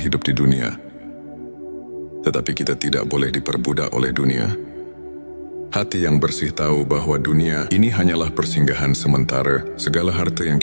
di dunia, tetapi kita tidak boleh diperbudak oleh dunia. Hati yang bersih tahu bahwa dunia ini hanyalah persinggahan sementara. Segala harta yang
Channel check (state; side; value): inverted; both; correlation -1.00